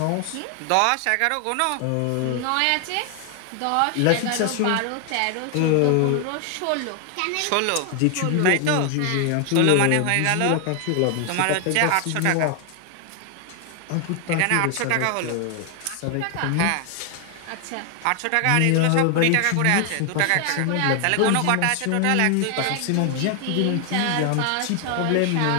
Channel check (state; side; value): different; both; correlation 0.00